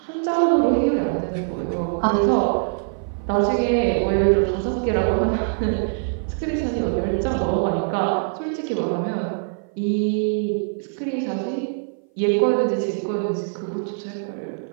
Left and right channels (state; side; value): silent; left; 58 dB below the other